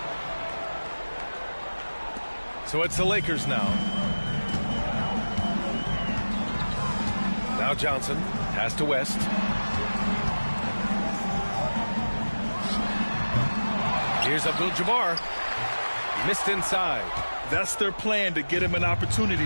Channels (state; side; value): inverted; both; correlation -1.00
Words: So it's the Lakers now. Now Johnson. Pass to West. Here's Abdul-Jabaar. Missed inside. That's their plan, to get him an